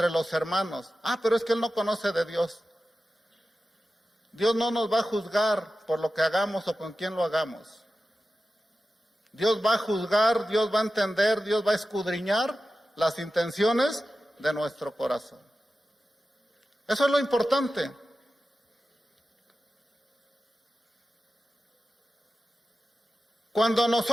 los hermanos. Pero es que él no conoce de Dios. Dios no nos va a juzgar por lo que hagamos o con quién lo hagamos. Dios va a juzgar, Dios va a entender, Dios va a escudriñar las intenciones de nuestro corazón. Eso es lo importante. Cuando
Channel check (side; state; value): both; normal; correlation 0.93